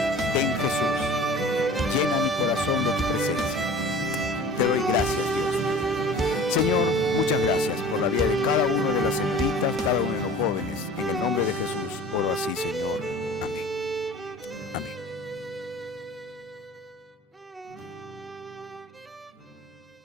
Ven, Jesús, llena mi corazón de tu presencia. Te doy gracias, Dios. Señor, muchas gracias por la vida de cada uno de las señoritas, cada uno de los jóvenes. En el nombre de Jesús oro así, Señor. Amén. Amén.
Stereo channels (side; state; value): both; normal; correlation 0.43